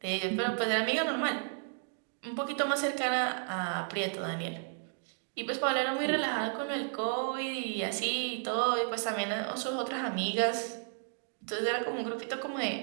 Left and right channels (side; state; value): left; silent; digital silence